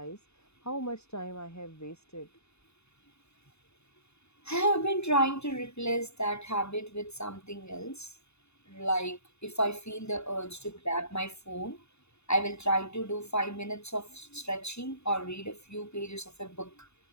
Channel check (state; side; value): late; right; 0.80 ms